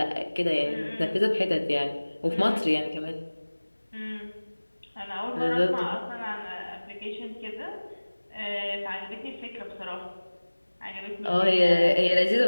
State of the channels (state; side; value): inverted; both; correlation -1.00